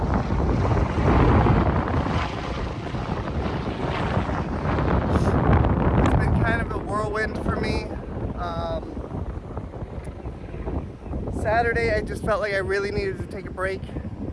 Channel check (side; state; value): both; identical; correlation 1.00